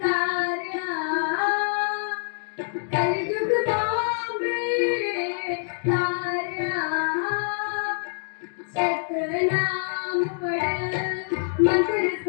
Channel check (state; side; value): silent; right; digital silence